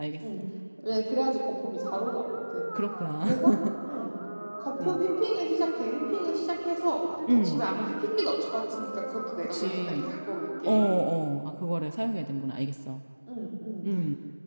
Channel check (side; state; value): both; inverted; correlation -1.00